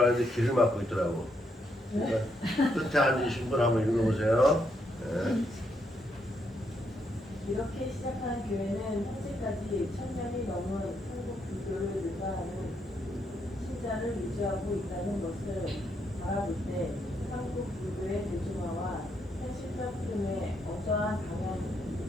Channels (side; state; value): both; normal; correlation 0.77